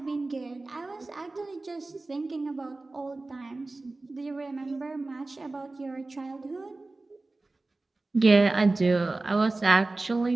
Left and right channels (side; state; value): left; quieter; 3.2 dB